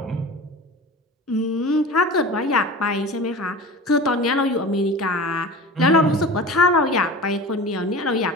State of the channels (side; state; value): both; normal; correlation 0.35